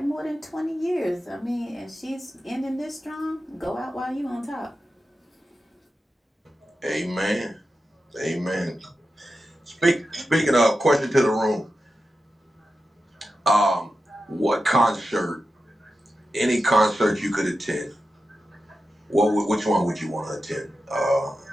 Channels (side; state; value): both; normal; correlation 0.91